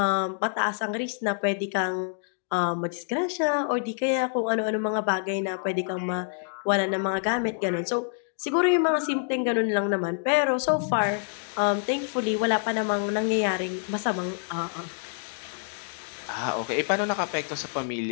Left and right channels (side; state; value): right; silent; digital silence